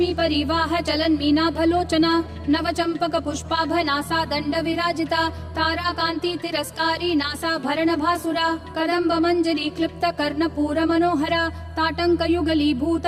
परिवाह चलन मीनाभलोचना नव चंपक पुष्पाभ नासा दंड विराजिता तारा कांति तिरस्कारी नासा भरण भासुरा कदम्ब मंजरी क्लिप्त कर्ण पूर मनोहरा ताटंक युगलीभूत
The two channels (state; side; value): identical; both; correlation 1.00